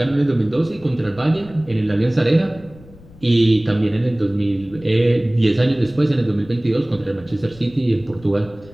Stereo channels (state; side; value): noise; left; rumble, 22 dB below the sound